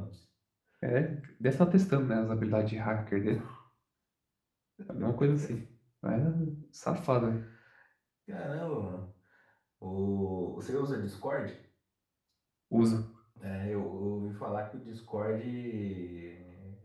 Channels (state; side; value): identical; both; correlation 1.00